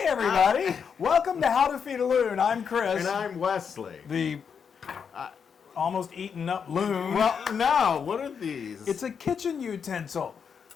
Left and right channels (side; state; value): right; quieter; 6.7 dB